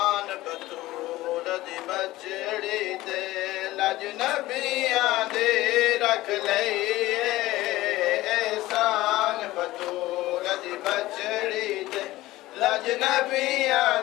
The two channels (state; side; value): quieter; right; 17.4 dB